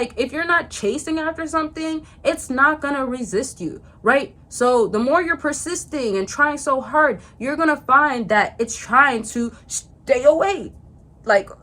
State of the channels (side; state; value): both; identical; correlation 1.00